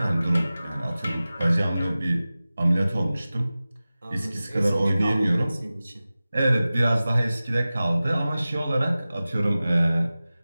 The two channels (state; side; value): inverted; both; correlation -0.97